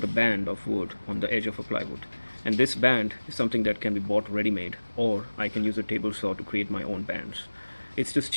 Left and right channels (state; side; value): inverted; both; correlation -1.00